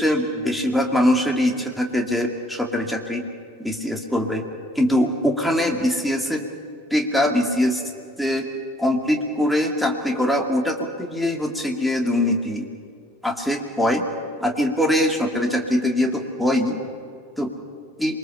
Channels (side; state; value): both; normal; correlation 0.64